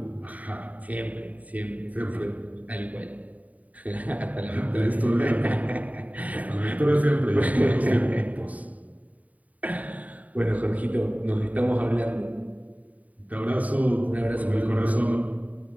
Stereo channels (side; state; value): left; late; 0.071 ms